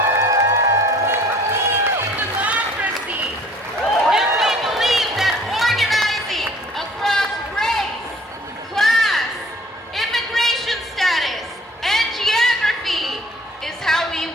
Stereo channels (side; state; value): both; normal; correlation 0.53